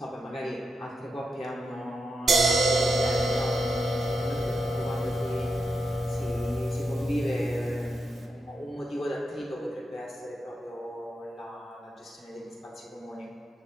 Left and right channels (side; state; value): both; normal; correlation 0.85